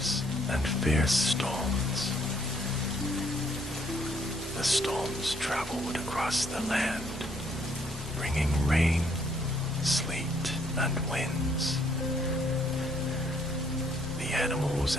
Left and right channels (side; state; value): both; normal; correlation 0.68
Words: and fierce storms. The storms traveled across the land, bringing rain, sleet, and winds. The animals